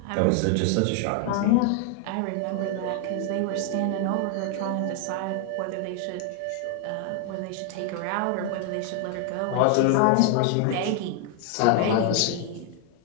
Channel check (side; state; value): both; different; correlation 0.00